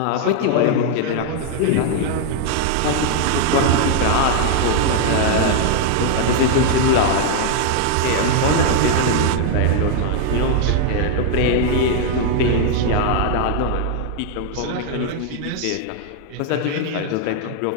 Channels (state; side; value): different; both; correlation 0.00